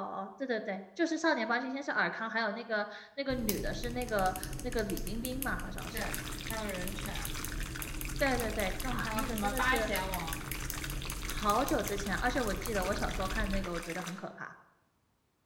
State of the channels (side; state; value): both; identical; correlation 1.00